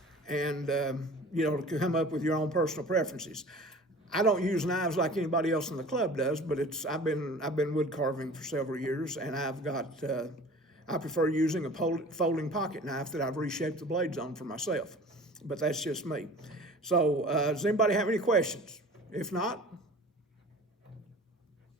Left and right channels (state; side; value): normal; both; correlation 0.43